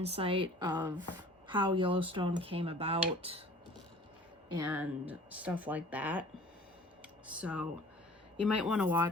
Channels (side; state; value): both; normal; correlation 0.48